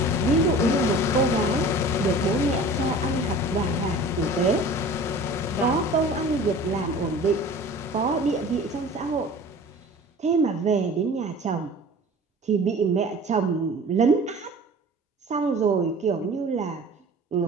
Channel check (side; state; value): both; normal; correlation 0.42